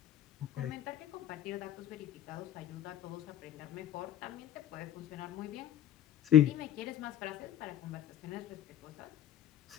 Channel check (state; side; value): quieter; right; 11.3 dB